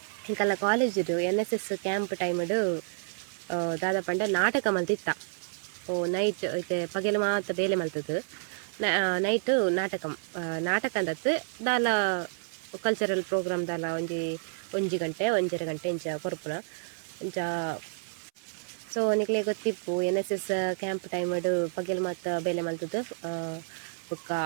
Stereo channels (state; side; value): silent; left; 58 dB below the other